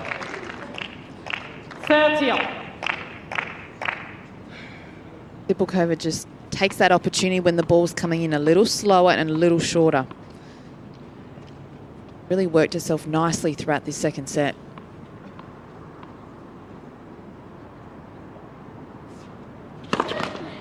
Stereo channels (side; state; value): both; identical; correlation 1.00